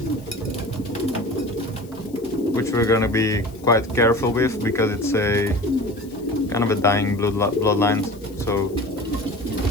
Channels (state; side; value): noise; left; hiss, 25 dB below the sound